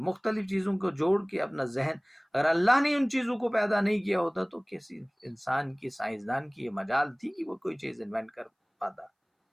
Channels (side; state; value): both; identical; correlation 1.00